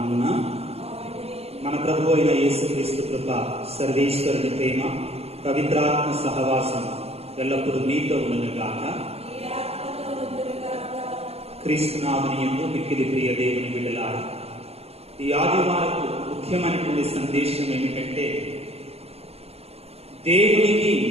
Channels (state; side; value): late; left; 0.29 ms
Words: మన ప్రభు అయిన యేసుక్రీస్తు కృప, సర్వేశ్వరుని ప్రేమ, పవిత్రాత్మ సహవాసం ఎల్లప్పుడూ మీతో ఉండునుగాక. క్రీస్తునాథుని యందు మిక్కిలి ప్రియ దేవుని బిడ్డలారా, ఈ ఆదివారపు ముఖ్యమైనటువంటి సందేశం ఏమిటంటే, దేవునికి